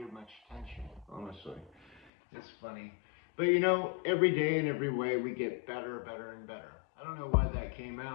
her much attention, honestly. It's funny. But you know, every day and every way we get better, better, and better. I don't know why that came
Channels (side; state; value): right; drops out; at 2.1 s